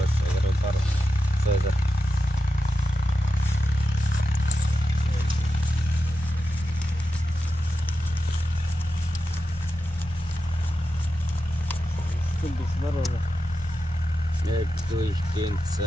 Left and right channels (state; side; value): normal; both; correlation 0.90